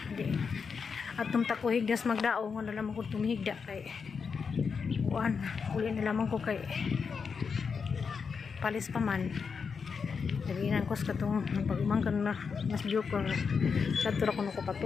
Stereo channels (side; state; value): right; quieter; 5.7 dB